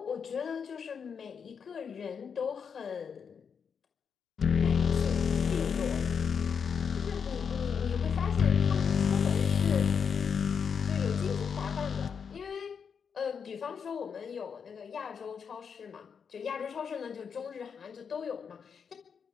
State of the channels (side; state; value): right; quieter; 6.5 dB